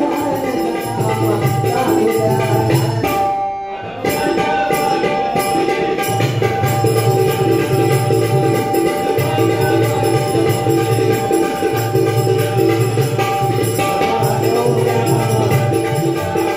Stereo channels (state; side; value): noise; right; rumble, 27 dB below the sound